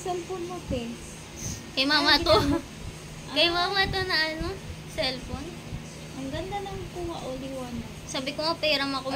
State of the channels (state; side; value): identical; both; correlation 1.00